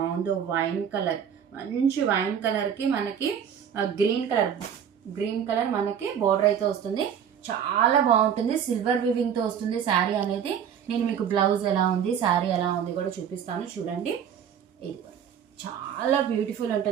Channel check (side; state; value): left; quieter; 8.4 dB